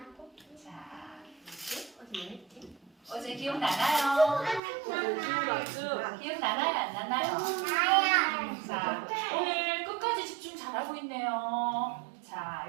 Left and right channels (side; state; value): left; drops out; at 4.6 s